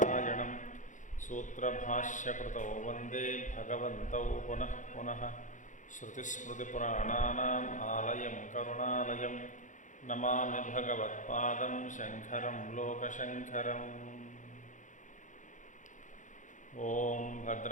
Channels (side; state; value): right; late; 0.37 ms